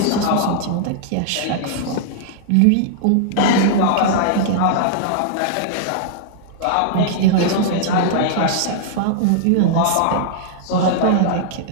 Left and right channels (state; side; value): different; both; correlation -0.01